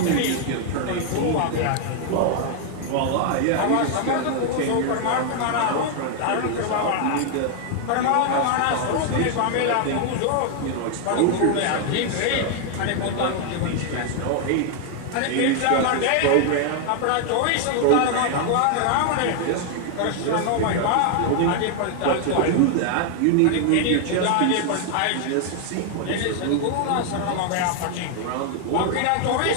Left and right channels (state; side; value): different; both; correlation 0.00